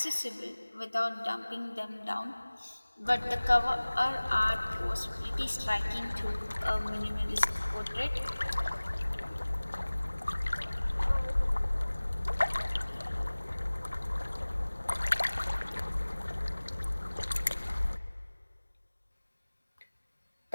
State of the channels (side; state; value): both; inverted; correlation -1.00